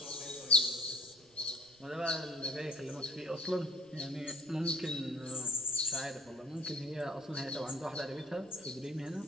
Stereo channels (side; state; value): right; noise; rumble, 30 dB below the sound